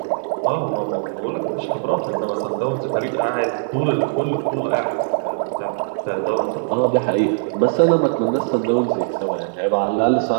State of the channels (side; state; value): left; silent; digital silence